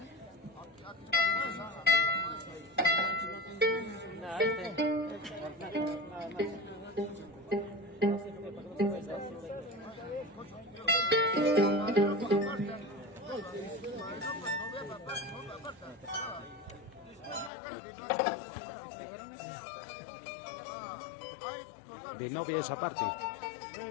De novia esa parte.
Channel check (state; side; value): drops out; right; at 17.5 s